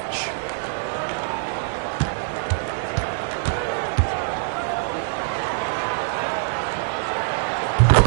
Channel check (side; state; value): left; silent; 63 dB below the other